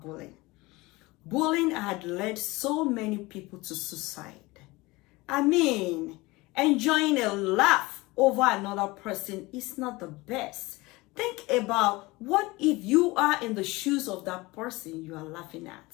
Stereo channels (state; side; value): quieter; right; 22.0 dB